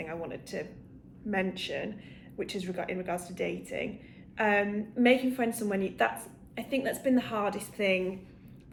I wanted to mention, which is in regards to dating. Making friends somewhere new, I think that's been the hardest thing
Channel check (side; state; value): both; identical; correlation 1.00